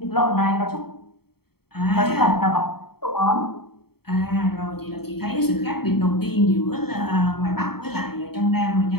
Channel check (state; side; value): late; right; 0.95 ms